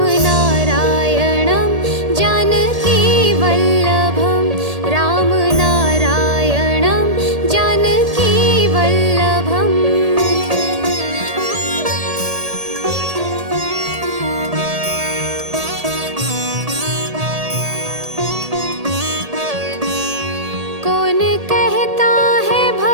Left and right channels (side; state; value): left; late; 1.8 ms